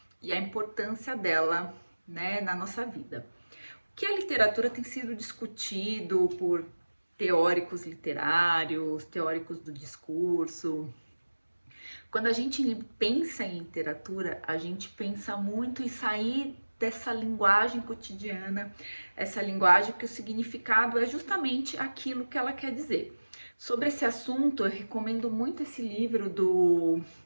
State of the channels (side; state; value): both; inverted; correlation -1.00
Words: e a importância dela, né, na nossa vida. Que a literatura tem sido discutido por teóricos literários, teóricos do discurso. Quando a gente pensa em literatura, a gente pensa muito em sair dessa linguagem cotidiana, essa linguagem que o significado é justamente aquilo que ela quer dizer. Sobre esse assunto, eu recomendo muito esse livro do